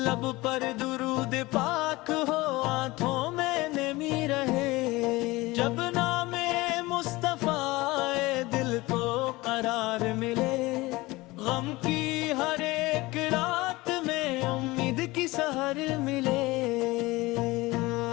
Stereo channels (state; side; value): quieter; right; 21.0 dB